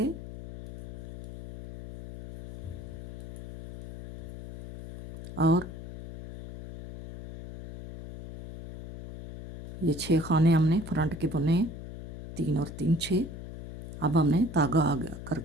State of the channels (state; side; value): noise; left; hum, 11 dB below the sound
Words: और ये 6 खाने हमने फ्रंट के बुने, 3 और 3 6। अब हमने धागा आगे